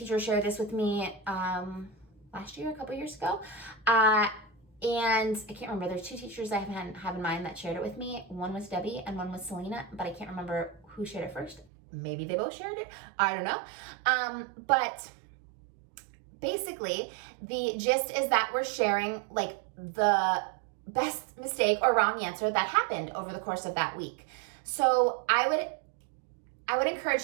shared this with me last year, a couple years ago. And I can't remember, there's 2 teachers I have in mind that shared it with me. One was Debbie and one was Selena, but I can't remember who shared it first. maybe they both shared it. I don't know. But basically, the gist is that we're sharing like the best mistake or wrong answer that happened over the course of that week. So I would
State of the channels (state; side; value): drops out; left; at 11.7 s